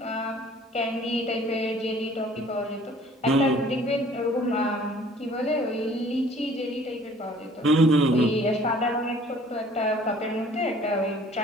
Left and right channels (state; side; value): normal; both; correlation 0.54